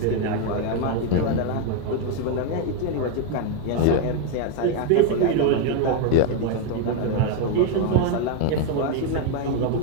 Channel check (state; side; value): different; both; correlation 0.01